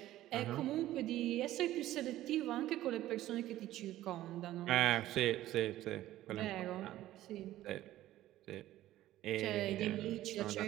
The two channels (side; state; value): left; quieter; 14.5 dB